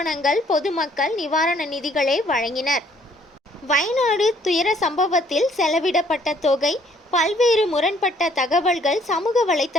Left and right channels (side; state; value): both; normal; correlation 0.62